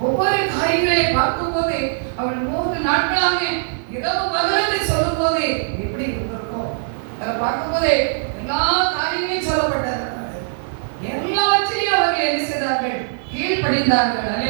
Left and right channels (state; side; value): silent; left; digital silence